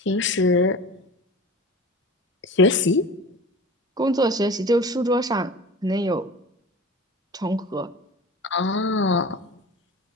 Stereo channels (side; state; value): both; normal; correlation 0.36